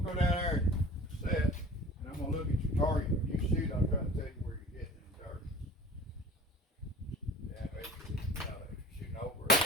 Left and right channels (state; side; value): normal; both; correlation 0.42